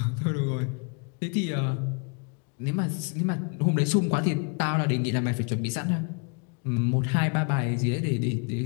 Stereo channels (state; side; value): quieter; right; 35.9 dB